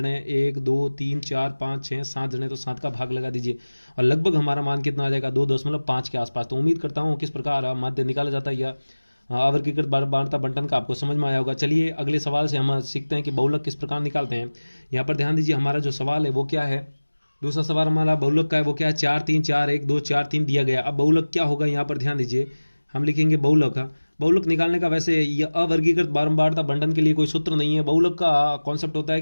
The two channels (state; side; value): inverted; both; correlation -1.00